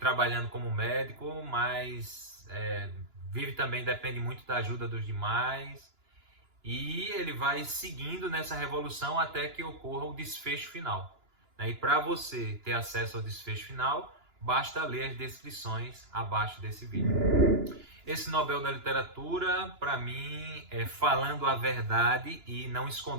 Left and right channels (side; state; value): left; late; 2.9 ms